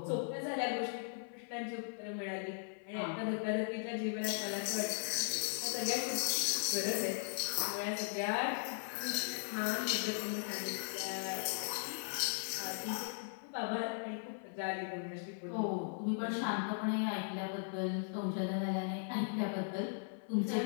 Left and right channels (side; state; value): right; silent; 52 dB below the other